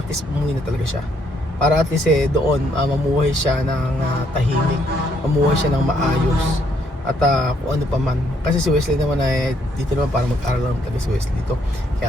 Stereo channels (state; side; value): normal; both; correlation 0.71